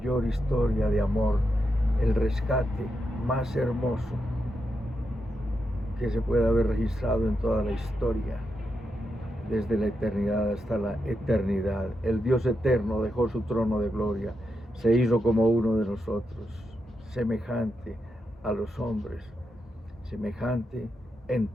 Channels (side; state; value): both; normal; correlation 0.85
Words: historia de amor, el rescate más hermoso que se puede haber registrado en toda la historia, desde la eternidad hasta la eternidad. El Dios eterno dejó su trono de gloria, se hizo como uno de nosotros, semejante a los hombres, semejante en